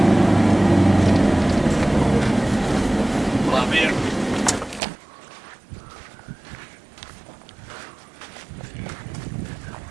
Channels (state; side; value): drops out; left; at 4.8 s